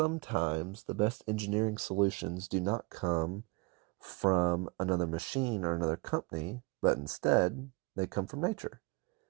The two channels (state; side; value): quieter; left; 27.0 dB